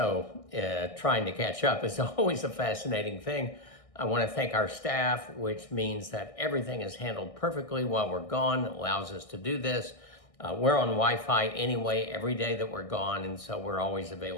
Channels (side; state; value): right; late; 1.6 ms